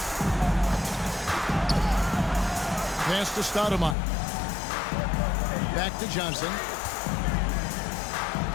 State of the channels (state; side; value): drops out; right; at 4.0 s